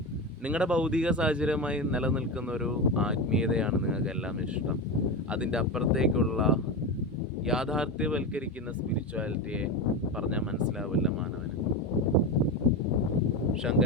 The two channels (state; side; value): normal; both; correlation 0.18